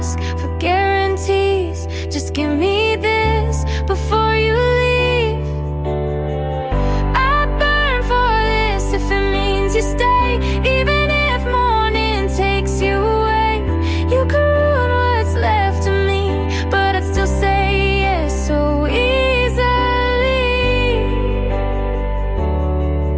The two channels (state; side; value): identical; both; correlation 1.00